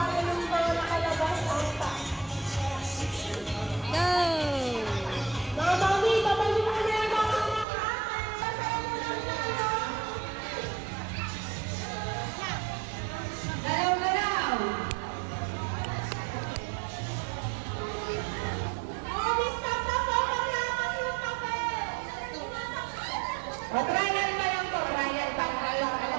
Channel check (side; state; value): left; drops out; at 7.7 s